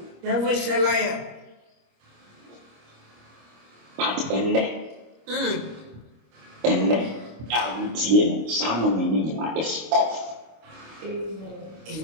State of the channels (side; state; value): left; late; 26 ms